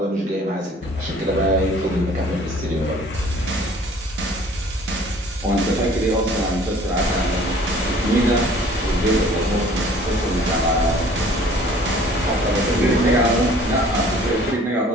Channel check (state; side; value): normal; both; correlation 0.52